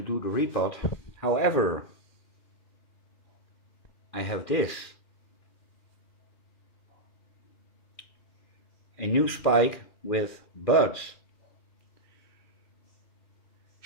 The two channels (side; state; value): right; late; 2.4 ms